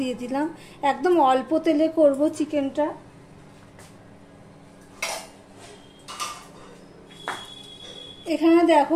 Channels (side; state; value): both; identical; correlation 1.00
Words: দিলাম। একদম অল্প তেলে করব চিকেনটা। এখানে দেখো